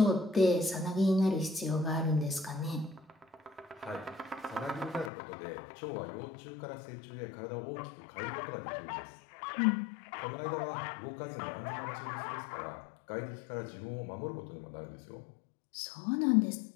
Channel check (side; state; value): right; drops out; at 5.1 s